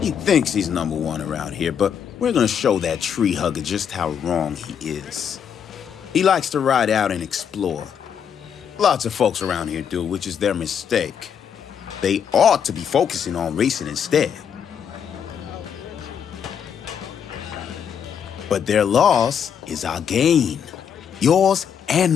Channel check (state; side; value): quieter; right; 7.9 dB